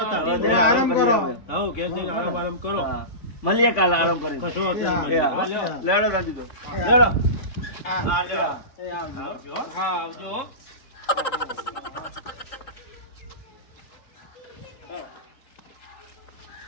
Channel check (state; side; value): late; right; 3.6 ms